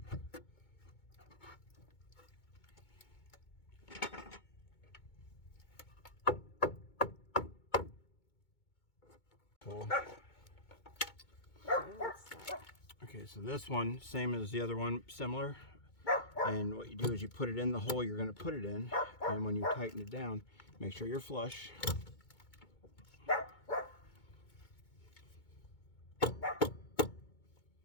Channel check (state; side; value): late; right; 2.2 ms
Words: Cool. Okay, what's that? Okay, so this one, same as the other one, similar. And what you do is you put it in the hole you're going to put it in, and when you tighten it down, make sure you're flush. Now